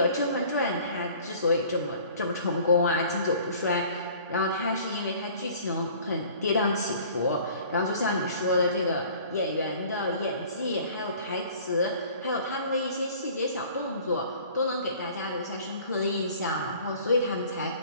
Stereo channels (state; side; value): inverted; both; correlation -0.50